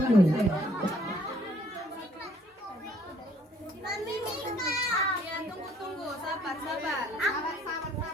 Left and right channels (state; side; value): normal; both; correlation 0.62